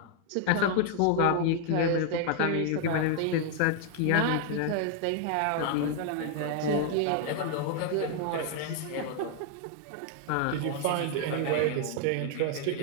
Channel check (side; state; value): both; different; correlation 0.00